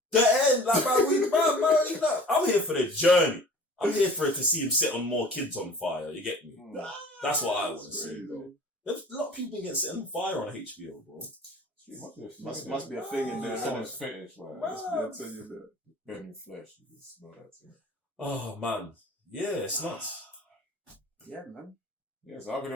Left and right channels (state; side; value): normal; both; correlation 0.44